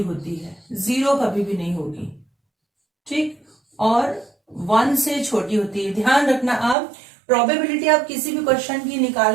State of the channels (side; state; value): left; drops out; at 6.8 s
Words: है, 0 कभी भी नहीं होगी। ठीक, और 1 से छोटी होती है। ध्यान रखना, आप प्रोबेबिलिटी आप किसी भी क्वेश्चन की